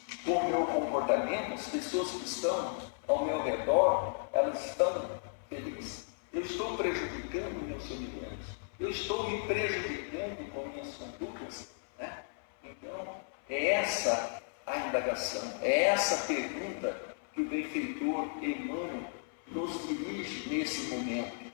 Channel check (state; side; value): silent; right; 55 dB below the other